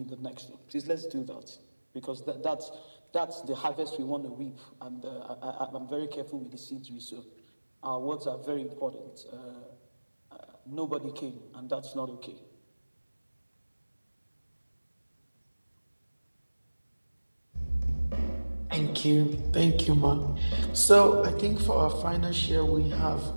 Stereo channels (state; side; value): inverted; both; correlation -1.00